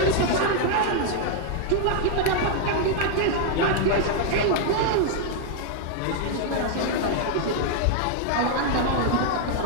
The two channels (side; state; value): both; different; correlation 0.00